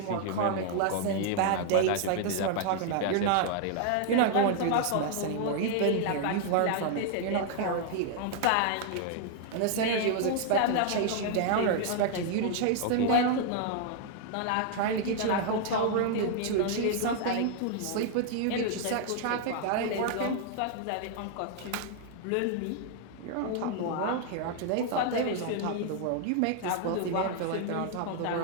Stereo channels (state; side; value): different; both; correlation 0.00